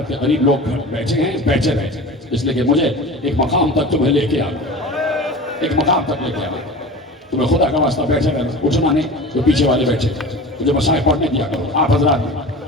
کے قریب لوگ بیٹھے ہیں بیٹھے رہتے ہیں، اس لیے کہ مجھے ایک مقام تک تمہیں لے کے آنا، ایک مقام تک لے کے آنا، تمہیں خدا کا واسطہ بیٹھے رہنا، اٹھنا نہیں، جو پیچھے والے بیٹھے مجھے مسائل پڑھنے دیا کرو، آپ حضرات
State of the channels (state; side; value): normal; both; correlation 0.35